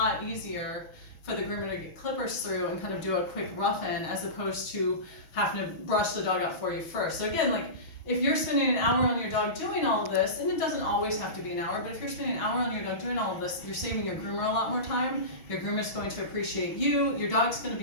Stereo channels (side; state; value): right; late; 6.5 ms